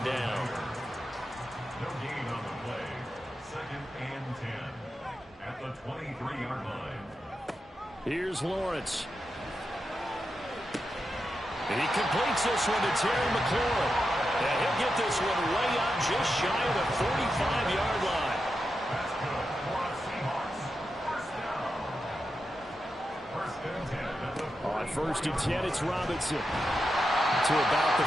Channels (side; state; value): both; normal; correlation 0.88